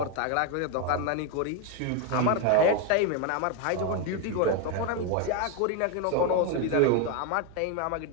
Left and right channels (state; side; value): different; both; correlation 0.01